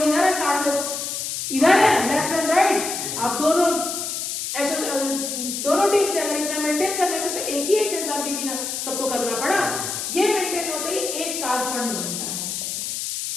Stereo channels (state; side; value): noise; left; hiss, 4 dB below the sound